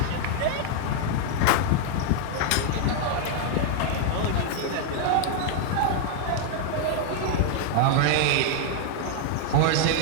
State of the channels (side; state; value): both; different; correlation 0.00